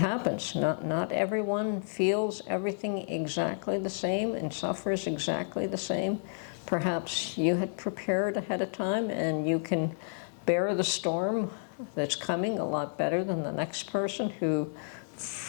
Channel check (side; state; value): right; silent; 57 dB below the other